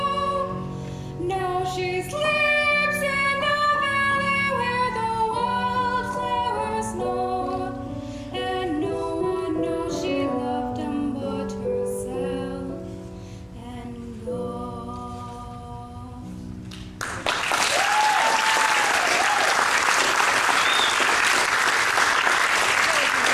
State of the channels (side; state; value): both; identical; correlation 1.00